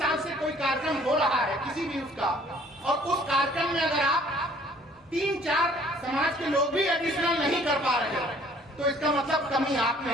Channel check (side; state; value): both; normal; correlation 0.57